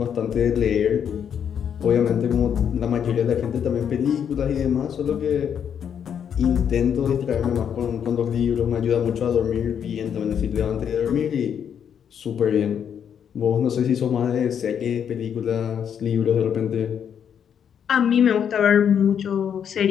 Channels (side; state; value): right; quieter; 8.2 dB